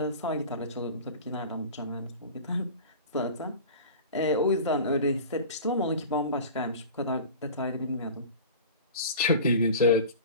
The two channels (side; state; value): both; inverted; correlation -0.37